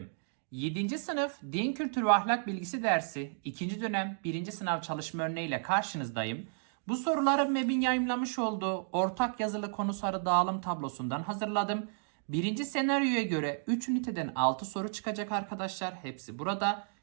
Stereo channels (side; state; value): left; silent; digital silence